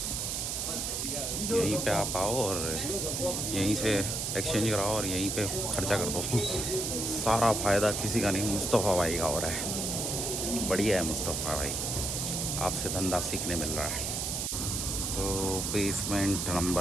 आप आओ और यहीं से एक्सचेंज कराओ और यहीं पे खर्चा कर दो। सारा फ़ायदा किसी का नहीं, मुस्तफ़ा भाई का हो रहा है। बढ़िया है मुस्तफ़ा भाई, आपसे धंधा सीखने मिल रहा है। तो बेसमेंट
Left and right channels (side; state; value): right; noise; hiss, 1 dB below the sound